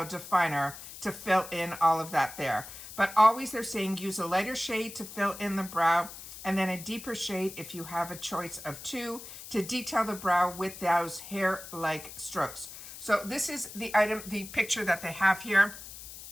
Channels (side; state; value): left; noise; hiss, 13 dB below the sound